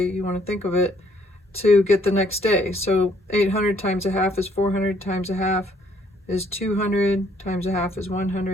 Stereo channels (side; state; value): both; normal; correlation 0.66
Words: you want to think of it, to get the next day. So 800 times a half is 400, times a half is 200, times a half is